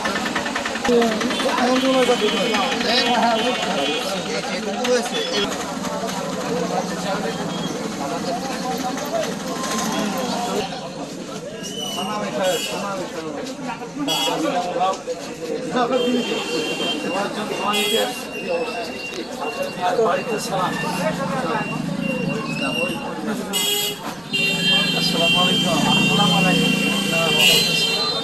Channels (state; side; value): noise; right; rumble, 29 dB below the sound